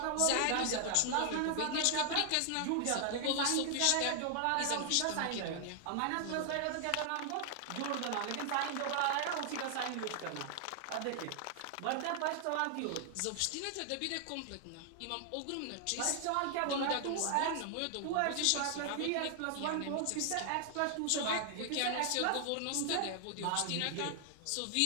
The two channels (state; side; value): different; both; correlation 0.00